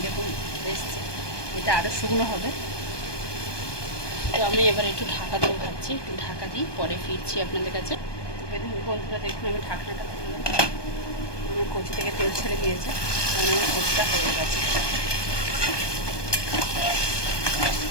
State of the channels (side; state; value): right; late; 1.2 ms